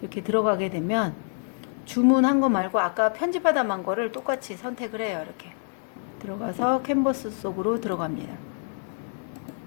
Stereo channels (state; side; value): silent; right; 60 dB below the other